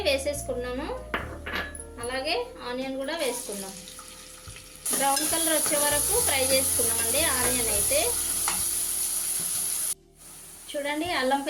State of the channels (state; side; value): identical; both; correlation 1.00